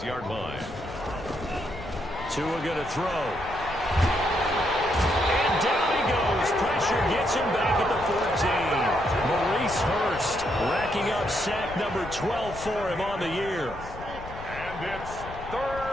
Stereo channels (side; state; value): left; noise; rumble, 13 dB below the sound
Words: line. Tua going to throw. And down he goes. Pressure gets him back at the 14. Maurice Hurst racking up sack number 12 for him on the year. And it's